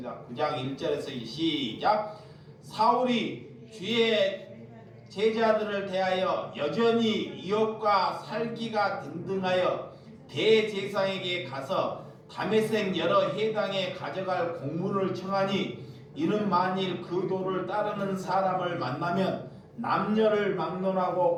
9장 1절에서 시작. 사울이 주의 제자들을 대하여 여전히 이업과 살기가 등등하여 대제사장에게 가서 다메섹 여러 해당에 가져갈 공문을 청하니 이는 만일 그 도를 따르는 사람을 만나면 남녀를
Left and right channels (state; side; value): identical; both; correlation 1.00